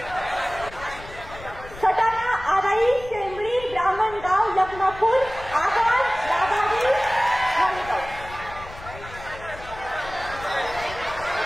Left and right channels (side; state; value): left; noise; rumble, 16 dB below the sound